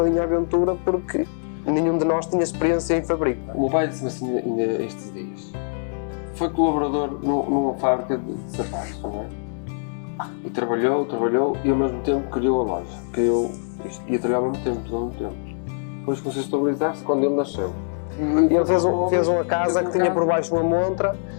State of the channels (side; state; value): right; silent; digital silence